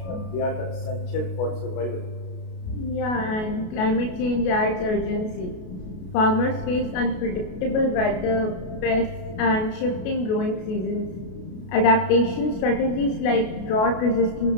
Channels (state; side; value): late; right; 33 ms